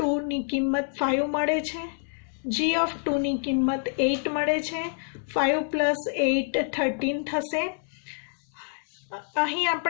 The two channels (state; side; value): silent; right; 60 dB below the other